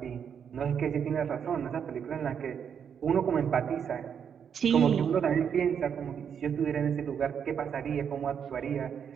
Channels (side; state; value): left; quieter; 7.7 dB